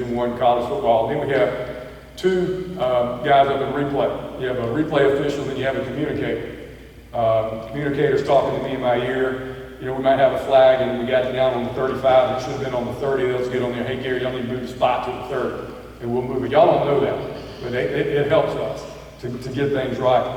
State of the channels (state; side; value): identical; both; correlation 1.00